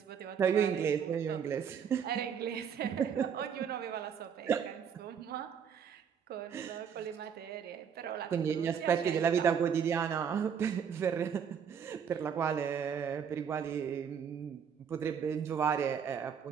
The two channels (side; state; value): left; quieter; 7.4 dB